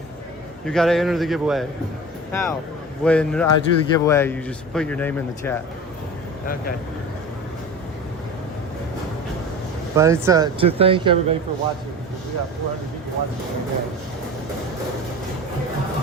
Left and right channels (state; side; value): normal; both; correlation 0.34